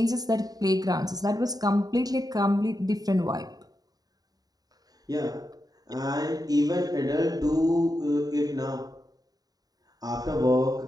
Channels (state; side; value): late; left; 0.18 ms